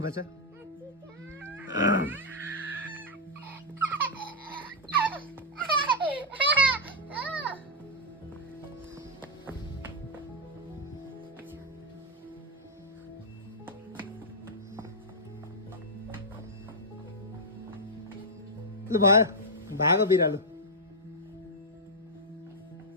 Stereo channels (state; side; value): normal; both; correlation -0.03